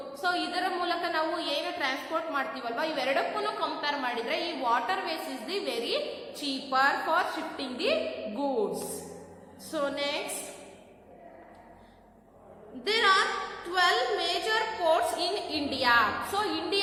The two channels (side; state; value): both; identical; correlation 1.00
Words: ಸೊ ಇದರ ಮೂಲಕ ನಾವು ಏನು ಟ್ರಾನ್ಸ್ಪೋರ್ಟ್ ಮಾಡ್ತೀವಲ್ವಾ, ಇವೆರಡಕ್ಕೂ ಕಂಪೇರ್ ಮಾಡಿದ್ರೆ ಈ water ways is the very cheaper for shifting the goods. So next, there are 12 major ports in India. So